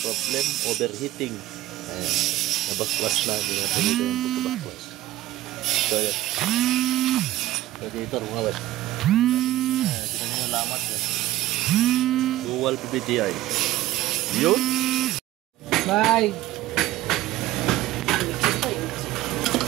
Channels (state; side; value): quieter; left; 15.4 dB